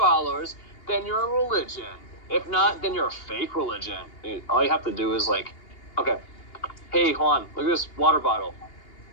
then you're a religion. If not, then you're a fake religion. All you have to do is like, okay, hey Juan, look at this water bottle.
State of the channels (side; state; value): right; late; 2.8 ms